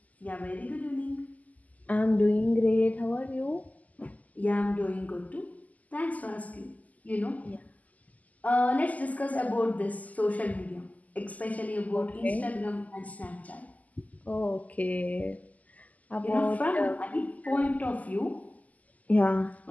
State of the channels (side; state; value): right; late; 0.076 ms